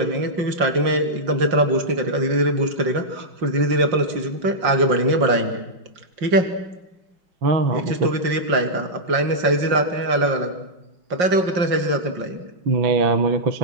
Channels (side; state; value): left; late; 5.6 ms